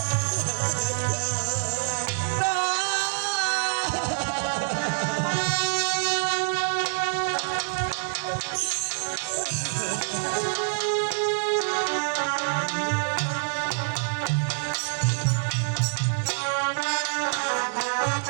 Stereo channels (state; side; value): silent; left; 61 dB below the other